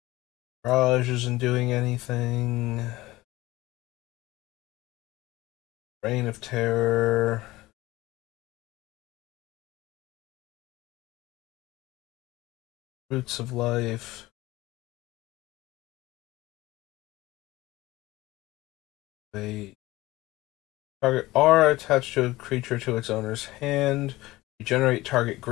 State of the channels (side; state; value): right; quieter; 18.6 dB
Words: Raj isn't doing anything. Reign of Terror. Roots of Life. Wait. Target R attached to a creature to its owner's hand. You generate target